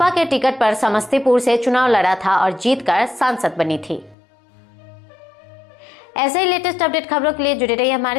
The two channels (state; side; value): drops out; right; at 4.2 s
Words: के टिकट पर समस्तीपुर से चुनाव लड़ा था और जीतकर सांसद बनी थी। ऐसे ही लेटेस्ट अपडेट खबरों के लिए जुड़े रहिए